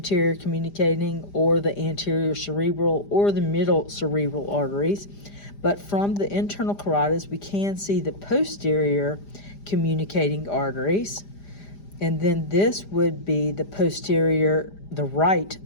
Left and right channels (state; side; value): late; right; 5.0 ms